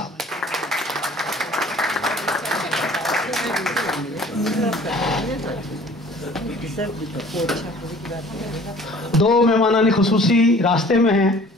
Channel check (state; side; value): normal; both; correlation 0.50